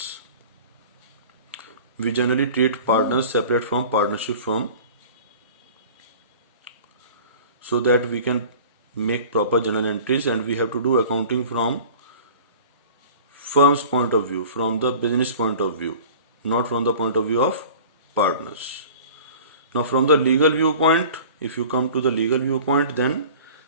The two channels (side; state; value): both; inverted; correlation -0.43